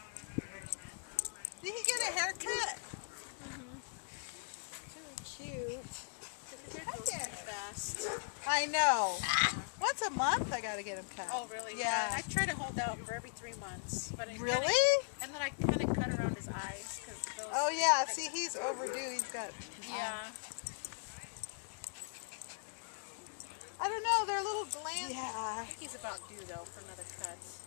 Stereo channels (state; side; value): silent; right; digital silence